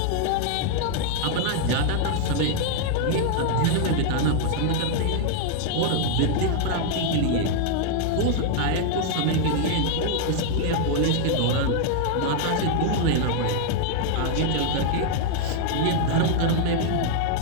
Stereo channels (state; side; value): different; both; correlation 0.00